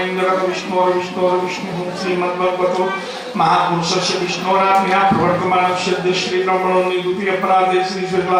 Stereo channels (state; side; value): identical; both; correlation 1.00